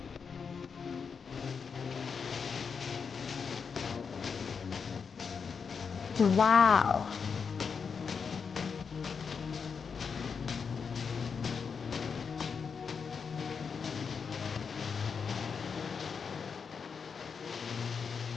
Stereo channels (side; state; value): right; quieter; 5.9 dB